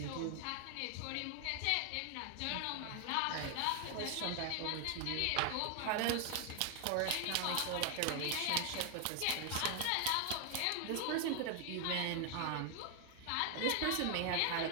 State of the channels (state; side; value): different; both; correlation 0.00